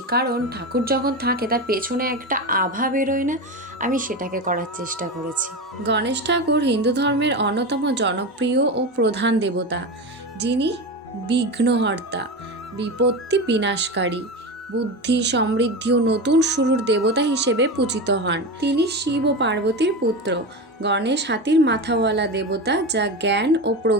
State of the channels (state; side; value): normal; both; correlation 0.22